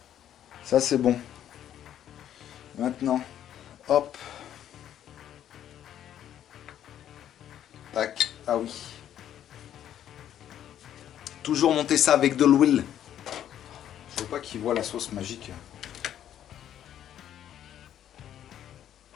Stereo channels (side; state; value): right; quieter; 10.7 dB